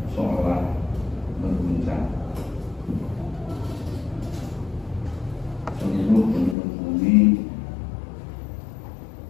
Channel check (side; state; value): right; drops out; at 6.6 s